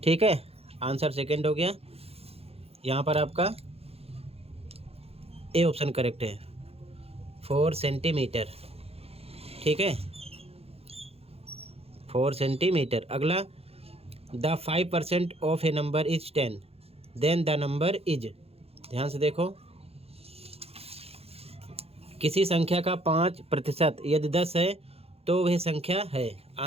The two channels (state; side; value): late; left; 0.29 ms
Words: ठीक है। आंसर सेकंड हो गया। यहाँ पर आपका ए ऑप्शन करेक्ट है, 4 सेंटीमीटर, ठीक है, 4 सेंटीमीटर। अगला, the 5% of a number is 10, then the number is. ध्यान से देखो, किसी संख्या का 5% यदि 10 है तो वह संख्या है।